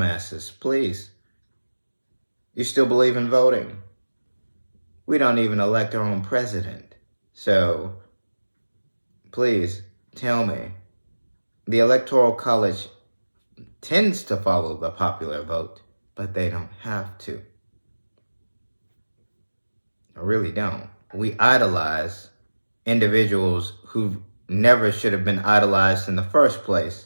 please. You still believe in voting? We don't even elect our own president. So, please tell me, the Electoral College tends to follow the popular vote, but they don't have to. I really don't. We idolize individuals who never should have been idolized in the first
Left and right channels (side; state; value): both; inverted; correlation -1.00